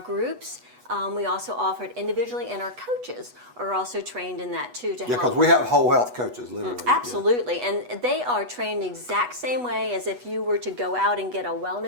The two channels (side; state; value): left; late; 8.1 ms